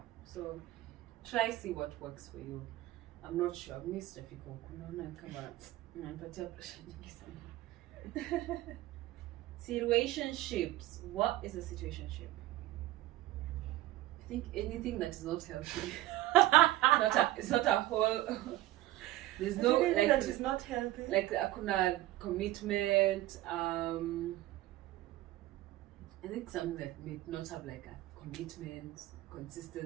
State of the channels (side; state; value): left; quieter; 16.1 dB